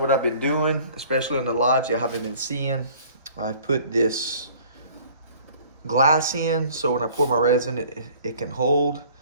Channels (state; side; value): inverted; both; correlation -0.52